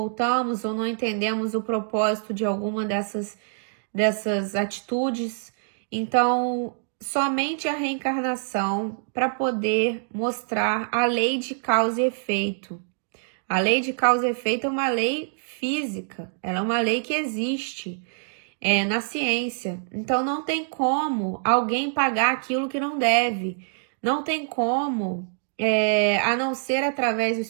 ou não entendemos o propósito de alguma dessas atitudes. Então, somente a reencarnação para poder mostrar a lei de causa e efeito. A lei de causa e efeito é uma lei física, ela é uma lei que existe na ciência. Então não tem como alguém pagar aquilo que não deve. Não tem como, a não ser através do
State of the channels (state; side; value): silent; left; digital silence